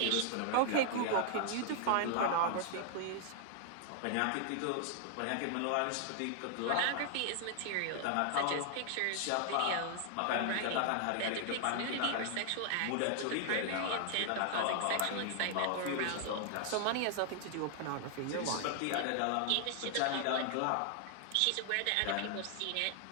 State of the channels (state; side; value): different; both; correlation 0.00